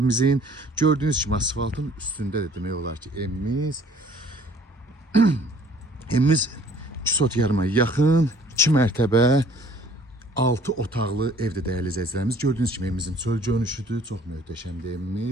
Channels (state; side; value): normal; both; correlation 0.55